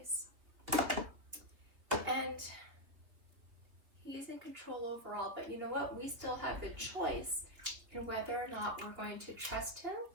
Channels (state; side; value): late; left; 2.6 ms